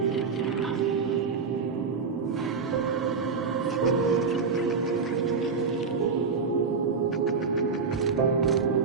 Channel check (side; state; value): left; quieter; 5.1 dB